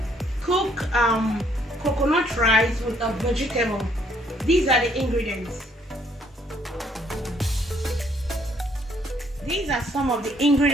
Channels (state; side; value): normal; both; correlation 0.66